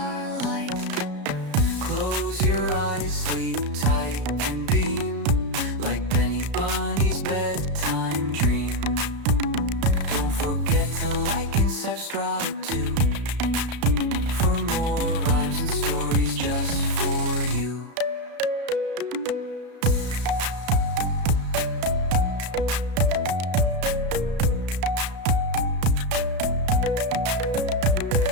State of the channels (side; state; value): left; late; 33 ms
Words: Close your eyes, sleep tight and beam, like Benny Bunny's bedtime dream. Don't forget to like and subscribe too, for more rhymes and stories just for you.